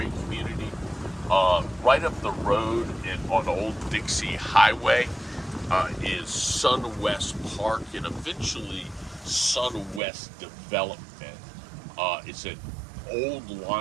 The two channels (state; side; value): drops out; left; at 10.0 s